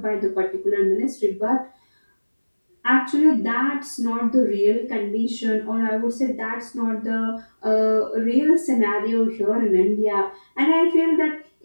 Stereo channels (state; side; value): inverted; both; correlation -1.00